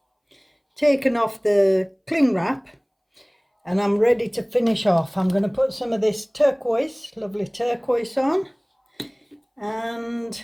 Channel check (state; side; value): identical; both; correlation 1.00